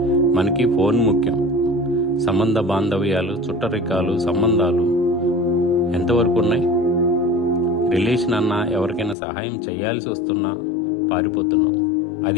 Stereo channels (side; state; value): right; drops out; at 9.2 s